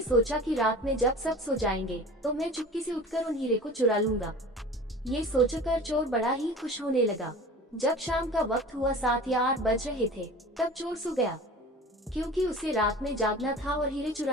सोचा कि रात में जब सब सो जाएंगे तो मैं चुपके से उठकर उन हीरे को चुरा लूंगा। ये सोचकर चोर बड़ा ही खुश होने लगा। जब शाम का वक्त हुआ, 7 या 8 बज रहे थे, तब चोर सो गया। क्योंकि उसे रात में जागना था और हीरे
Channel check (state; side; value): normal; both; correlation 0.39